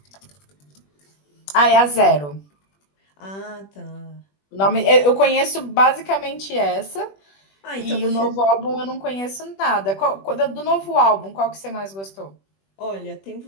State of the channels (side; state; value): right; late; 21 ms